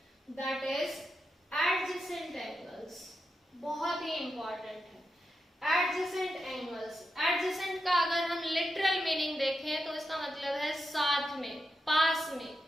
that is adjacent angles. बहुत ही इंपॉर्टेंट है एडजेसेंट एंगल्स। एडजेसेंट का अगर हम लिटरल मीनिंग देखें तो इसका मतलब है साथ में, पास में।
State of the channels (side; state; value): both; normal; correlation 0.87